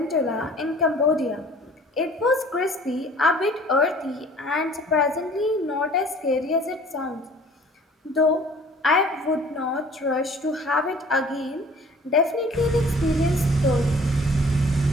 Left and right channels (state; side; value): normal; both; correlation 0.51